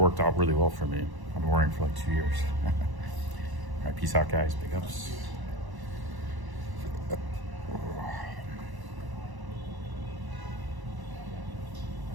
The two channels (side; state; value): left; late; 1.0 ms